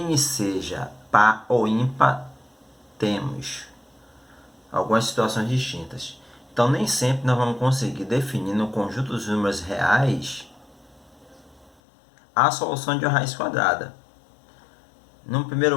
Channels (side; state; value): right; drops out; at 11.7 s